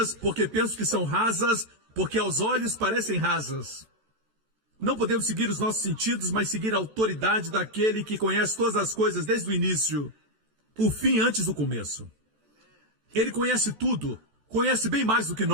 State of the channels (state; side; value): late; left; 14 ms